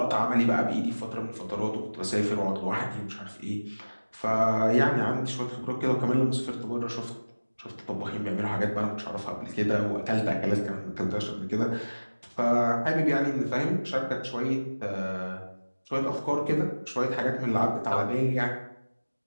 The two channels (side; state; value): both; inverted; correlation -1.00